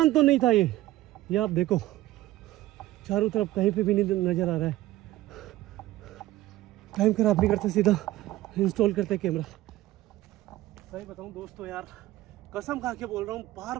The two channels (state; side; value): quieter; left; 16.1 dB